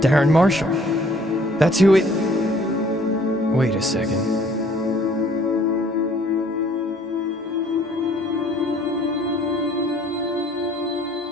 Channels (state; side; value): normal; both; correlation 0.58